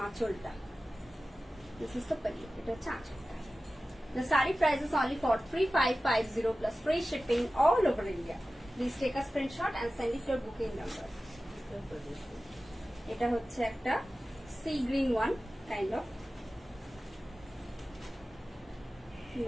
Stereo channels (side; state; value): both; normal; correlation 0.95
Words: আঁচলটা দিস ইজ দ্য পল্লু এটা হচ্ছে আঁচলটা The saree price is only for 3550 plus free shipping all over India. Please take a screenshot and send it to your booking number. এটা হচ্ছে একটা sea green one kind of